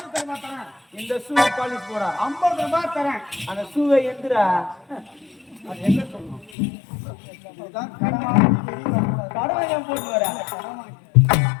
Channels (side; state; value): right; drops out; at 6.5 s